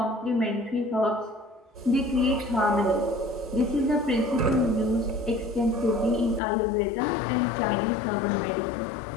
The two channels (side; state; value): right; drops out; at 6.4 s